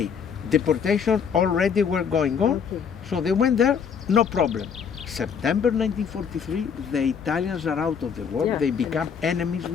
Deportation already were going on, so they went there, no problem. September 1943, the Italians are out of the war, they become enemies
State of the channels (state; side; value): quieter; right; 6.9 dB